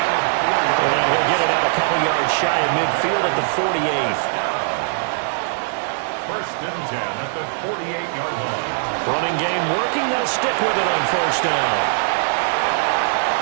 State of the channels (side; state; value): left; silent; digital silence